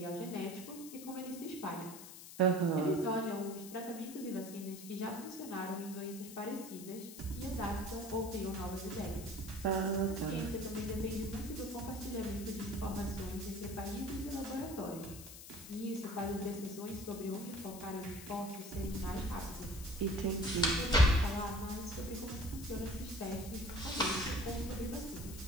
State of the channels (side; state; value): left; noise; hiss, 13 dB below the sound